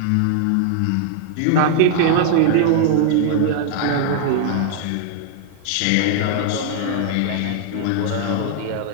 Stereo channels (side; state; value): both; different; correlation -0.01